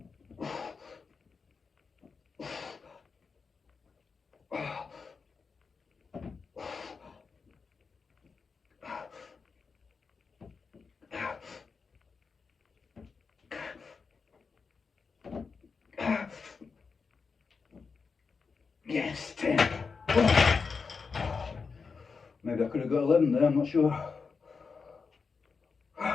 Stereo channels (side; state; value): right; quieter; 5.1 dB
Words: Yes, 10. Maybe I could have got 11 there, I'm not sure.